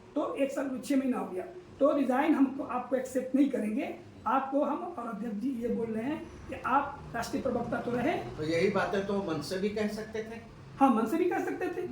तो 1 साल 6 महीना हो गया, तो रिजाइन हम आपको एक्सेप्ट नहीं करेंगे। आपको हम और अध्यक्ष जी ये बोल रहे हैं कि आप राष्ट्रीय प्रवक्ता तो रहे। तो यही बातें तो मंच से भी कह सकते थे। हाँ, मंच से भी कह सकते थे।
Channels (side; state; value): both; identical; correlation 1.00